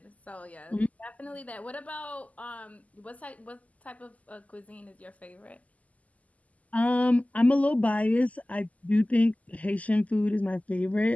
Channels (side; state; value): right; late; 0.073 ms